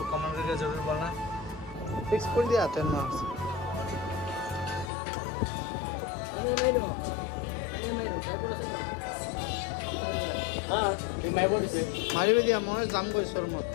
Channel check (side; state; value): right; drops out; at 4.9 s